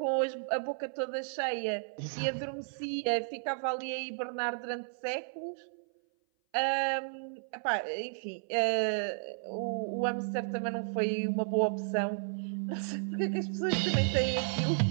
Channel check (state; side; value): silent; left; 56 dB below the other